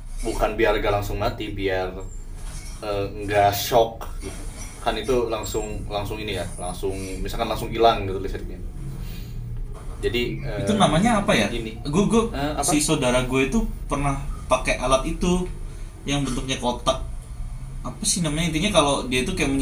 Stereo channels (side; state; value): both; identical; correlation 1.00